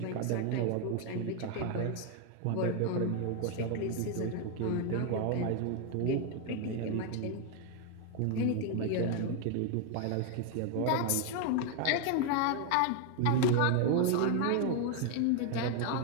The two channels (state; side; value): different; both; correlation 0.01